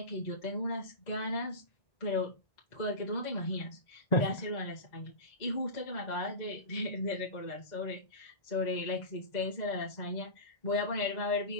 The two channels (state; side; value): late; right; 2.0 ms